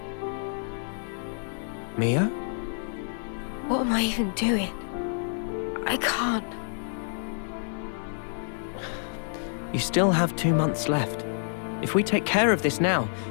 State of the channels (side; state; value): right; silent; digital silence